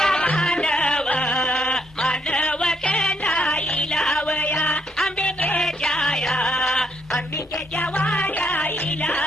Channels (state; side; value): normal; both; correlation 0.74